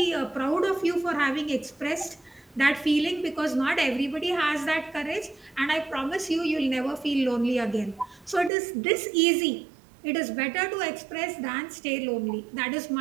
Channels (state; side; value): drops out; left; at 8.5 s